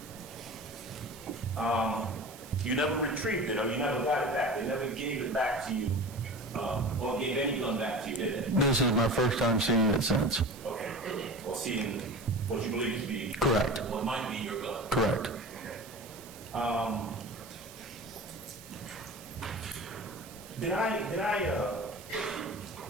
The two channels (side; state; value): right; noise; hiss, 18 dB below the sound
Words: You never retrieved it, or you never got it back. They never gave it back to you, or gave any gun back to you, did they? This is my first time seeing it since. Okay. Or seeing what you believe to be correct. What might be your gun. Correct.